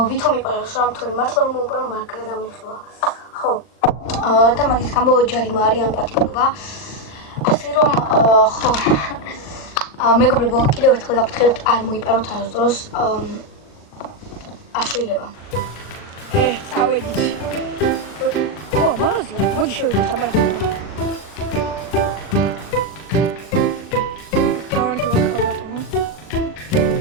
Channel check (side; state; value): right; late; 39 ms